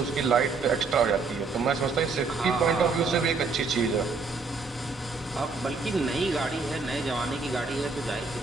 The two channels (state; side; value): quieter; left; 4.3 dB